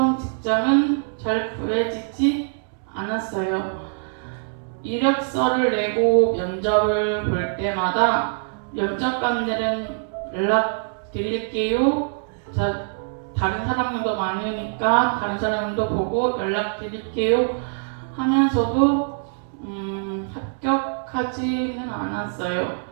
직장은 잘 구해지지 않았어요. 이력서를 내고 면접을 볼 때마다 면접관들은 연락 드릴게요. 다른 사람들도 많으니까 다른 사람도 보고 연락 드릴게요 하면서도 합격하지는 않았어요.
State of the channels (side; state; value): left; silent; 63 dB below the other